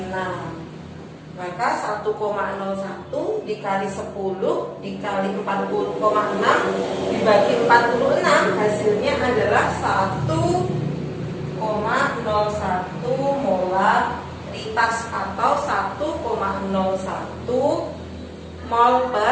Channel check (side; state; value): both; identical; correlation 1.00